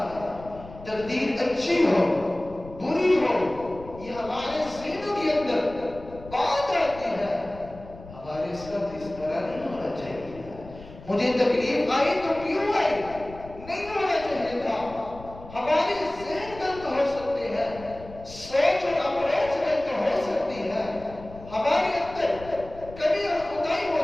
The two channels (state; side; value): noise; left; rumble, 17 dB below the sound